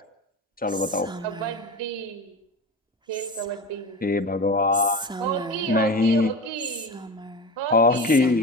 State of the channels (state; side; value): normal; both; correlation 0.28